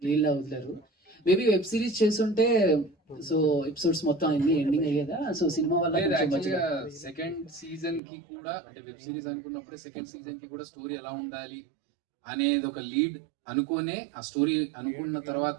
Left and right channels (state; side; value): drops out; left; at 8.0 s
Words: లీల్ వదిలేరు. మేబీ వెబ్ సిరీస్ చేస్తుంటే సో ఎపిసోడ్స్ మొత్తం అన్ని ఎండింగ్ అయ్యేదా? సో సినిమా వల్ల సెకండ్ సీజన్ కి కూడా అంటే వెబ్ సిరీస్ అనుకున్నప్పుడు సెకండ్ సీజన్ కి కూడా స్టోరీ ఎలా ఉండాలి అనేది ఒక లీడ్ అనుకునే ఆ స్టోరీ అనుకున్న